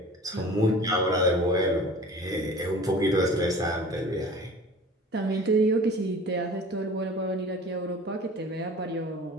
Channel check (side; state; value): both; normal; correlation 0.42